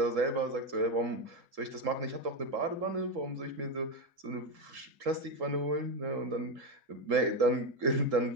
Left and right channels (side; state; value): left; late; 3.8 ms